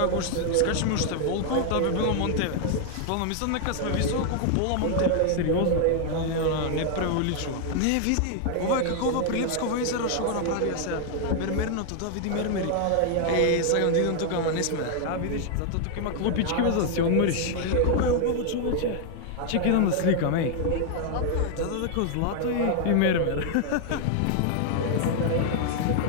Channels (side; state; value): both; different; correlation 0.00